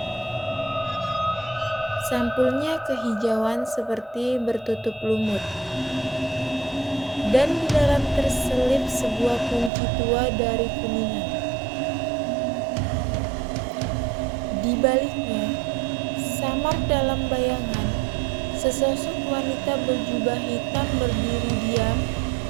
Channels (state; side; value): drops out; left; at 9.7 s